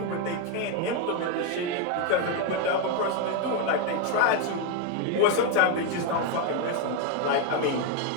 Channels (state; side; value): different; both; correlation 0.01